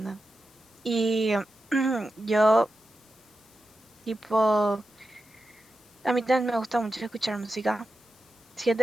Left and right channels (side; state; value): left; noise; hiss, 29 dB below the sound